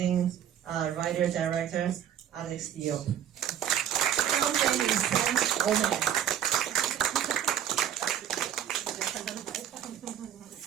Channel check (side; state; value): left; quieter; 10.0 dB